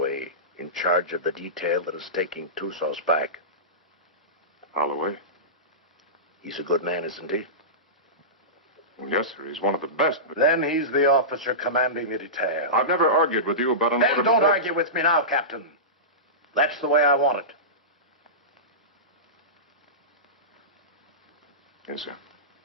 in charge of the detail that is taking Tusas back. Holloway? He's a good man, isn't he? Well, yes, sir. He's one of the best, but... Then he's the officer commanding the detail. I've never argued with you about an order... Then don't argue with me now, Captain. That's the way I want it. Yes, sir.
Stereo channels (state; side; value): normal; both; correlation -0.19